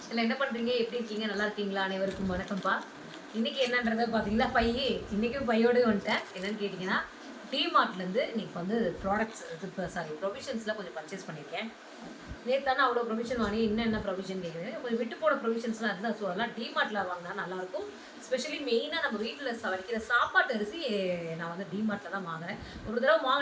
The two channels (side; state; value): both; identical; correlation 1.00